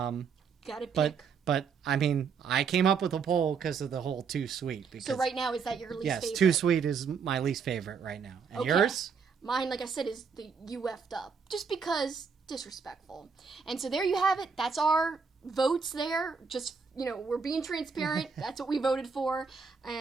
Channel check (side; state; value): left; quieter; 5.7 dB